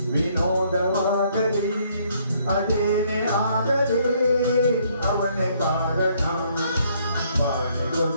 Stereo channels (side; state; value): both; inverted; correlation -0.66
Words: ವಿನೋದವಾಗಲಿ ಅದೇನೇ ಆಗಲಿ ಅವನೇ ಕಾರಣ